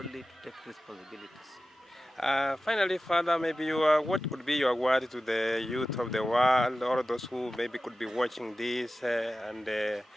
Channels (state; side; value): normal; both; correlation 0.95